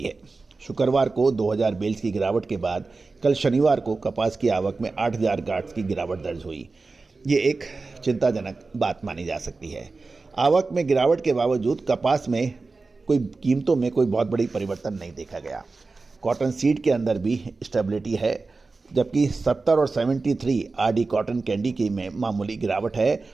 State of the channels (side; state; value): left; quieter; 3.9 dB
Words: है। शुक्रवार को 2,000 बेल्स की गिरावट के बाद कल शनिवार को कपास की आवक में 8,000 गांठ की गिरावट दर्ज हुई। ये एक चिंताजनक बात मानी जा सकती है। आवक में गिरावट के बावजूद कपास में कीमतों में कोई बहुत बड़ी परिवर्तन नहीं देखा गया। कॉटन सीड के अंदर भी स्टेबिलिटी है, जबकि 70 और 73 आरडी कॉटन कैंडी की में मामूली गिरावट है,